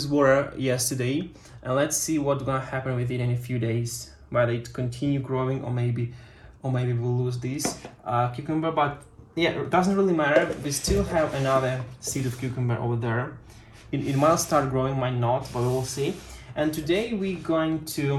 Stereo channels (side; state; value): both; identical; correlation 1.00